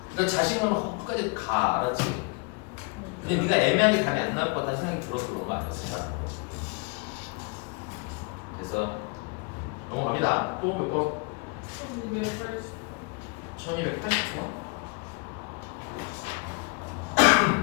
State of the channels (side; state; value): right; quieter; 32.3 dB